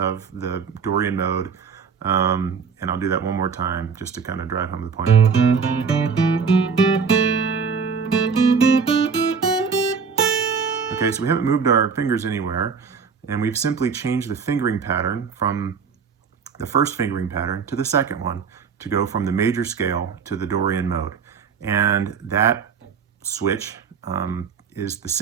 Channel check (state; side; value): quieter; left; 5.9 dB